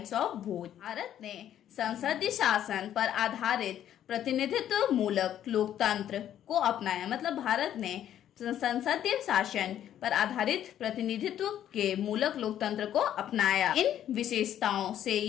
ऑफ वोट। भारत ने संसदीय शासन पर आधारित प्रतिनिधित्व मूलक लोकतंत्र को अपनाया। मतलब भारत ने संसदीय शासन पर आधारित प्रतिनिधित्व के मूलक लोकतंत्र को अपनाया। इन विशेषताओं से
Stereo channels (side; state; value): right; quieter; 10.9 dB